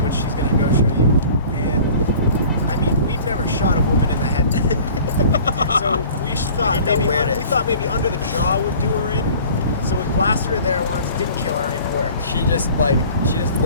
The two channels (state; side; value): inverted; both; correlation -0.46